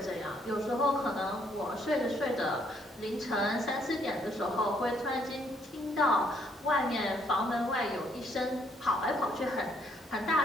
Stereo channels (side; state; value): both; normal; correlation 0.69